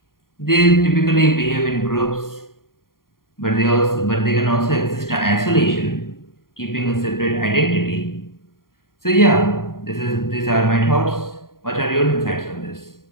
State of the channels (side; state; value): right; late; 0.91 ms